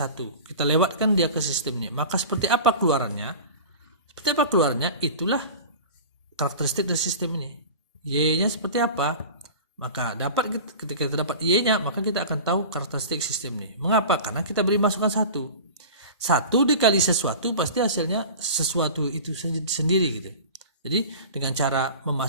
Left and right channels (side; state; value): both; inverted; correlation -0.35